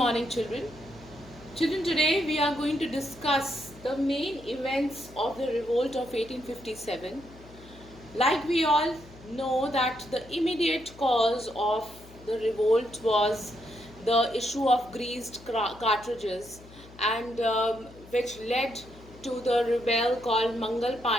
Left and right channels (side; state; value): left; noise; hum, 20 dB below the sound